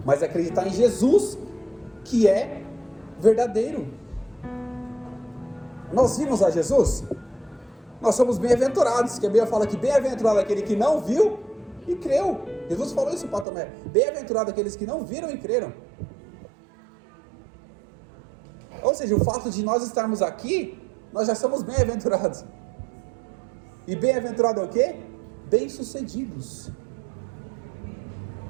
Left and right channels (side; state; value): left; drops out; at 13.5 s